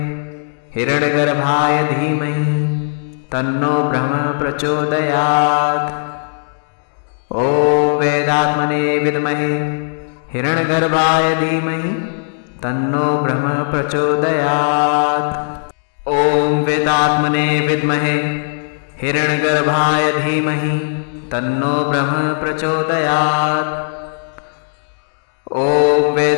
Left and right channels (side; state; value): right; silent; digital silence